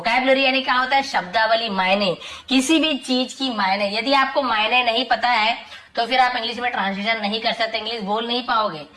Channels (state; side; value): identical; both; correlation 1.00